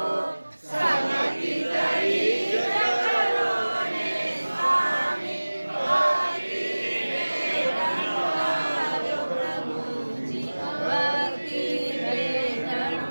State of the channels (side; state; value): both; inverted; correlation -1.00